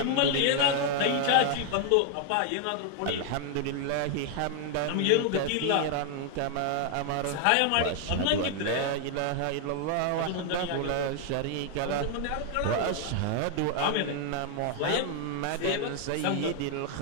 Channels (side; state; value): both; different; correlation 0.00